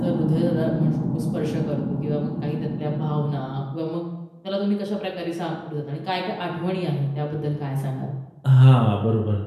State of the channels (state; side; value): identical; both; correlation 1.00